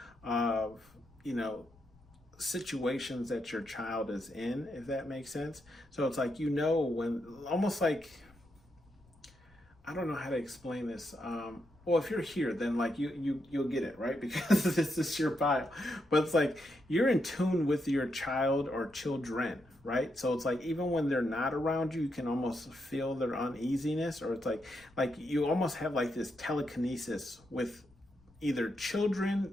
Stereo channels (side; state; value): left; noise; rumble, 29 dB below the sound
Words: of, you know, situations that your child is in, if that makes sense. So it's like, you know, when almost like, I don't know how to explain this. Well, if you're here, then like you'll get it, right? Because this is your pile. But it's like you're in tune with your child or children, right? So it's like even when they're not around you, you can almost feel their uneasiness, or it's like you almost have like this telekinesis with either